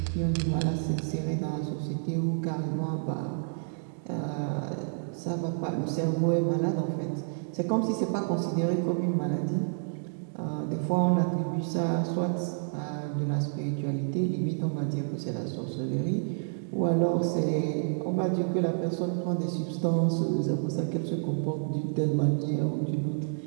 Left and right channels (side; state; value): left; silent; digital silence